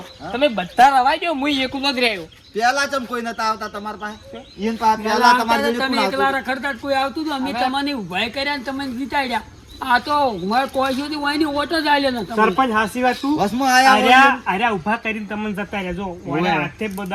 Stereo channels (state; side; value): identical; both; correlation 1.00